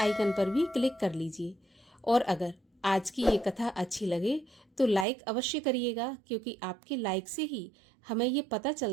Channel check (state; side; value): drops out; left; at 5.1 s